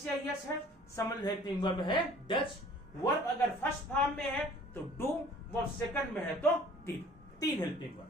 या यस है, समझ हेल्पिंग वर्ब है डज। वर्ब अगर फर्स्ट फॉर्म में है तो डू, वर्ब सेकंड में है तो डिड। 3 helping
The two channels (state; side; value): normal; both; correlation 0.51